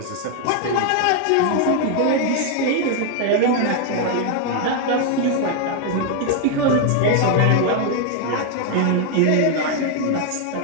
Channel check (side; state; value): both; different; correlation 0.00